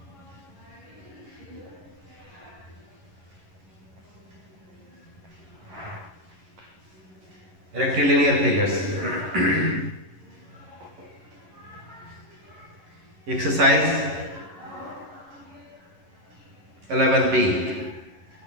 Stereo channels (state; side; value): late; left; 11 ms